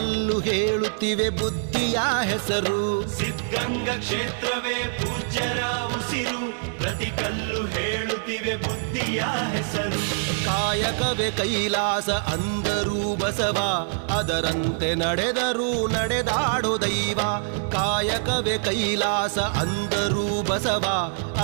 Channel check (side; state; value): left; silent; 60 dB below the other